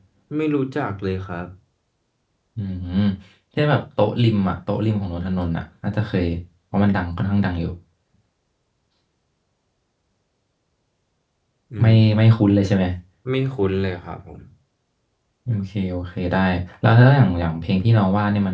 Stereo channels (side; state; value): both; identical; correlation 1.00